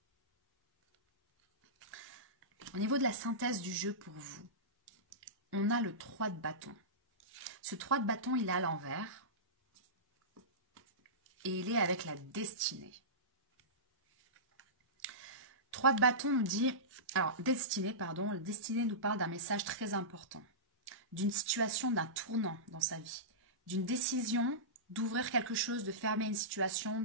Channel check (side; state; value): both; normal; correlation -0.18